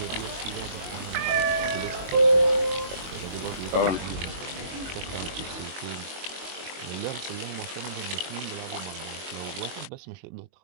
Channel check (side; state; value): left; late; 22 ms